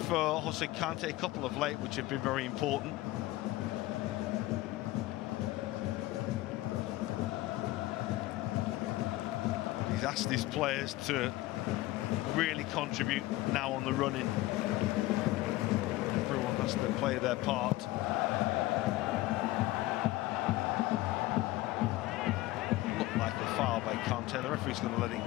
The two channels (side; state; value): right; quieter; 17.9 dB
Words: Jose Kante, a couple of late which have been very important. He's asked his players to really contribute now on the running. Everyone has to play their part. By Kante. The referee's going to let